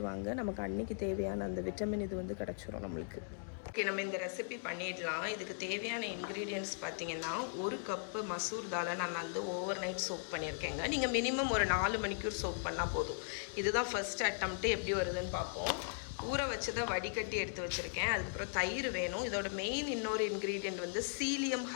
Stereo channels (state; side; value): silent; right; digital silence